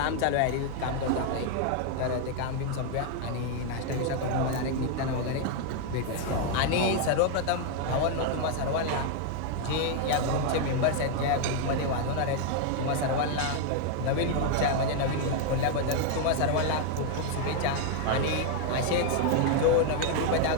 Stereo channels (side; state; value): both; different; correlation 0.00